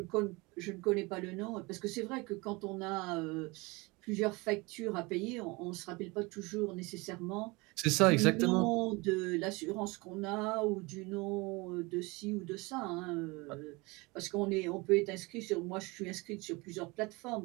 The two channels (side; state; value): left; quieter; 25.2 dB